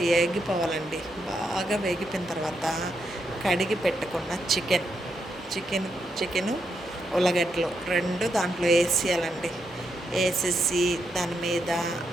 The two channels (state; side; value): normal; both; correlation 0.81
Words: వేగిపోవాలండి. బాగా వేగిపోయిన తర్వాత కడిగి పెట్టుకున్న చికెను ఉల్లగడ్డలు రెండు దాంట్లో వేసేయాలండి. వేసేసి దాని మీద